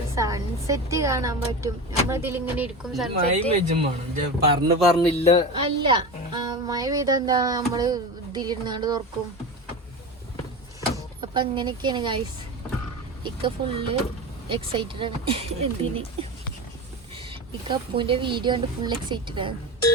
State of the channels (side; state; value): both; normal; correlation 0.25